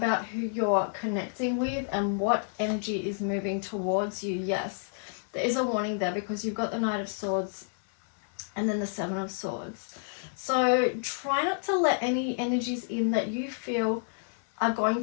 who you're connecting with and what energy is moving towards you. Yes, there is a warning there because you've got the Knight of Swords and then the Seven of Swords. So try not to let any energies in that you feel are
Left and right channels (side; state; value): right; silent; 58 dB below the other